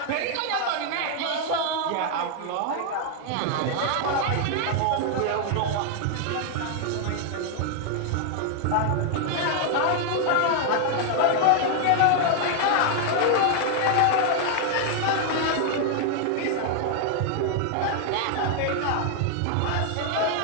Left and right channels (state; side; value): different; both; correlation 0.00